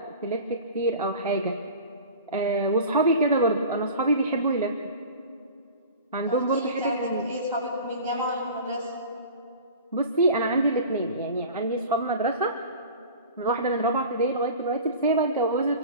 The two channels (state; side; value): inverted; both; correlation -0.39